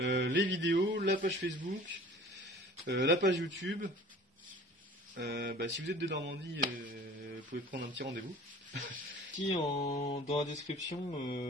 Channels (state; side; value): normal; both; correlation 0.46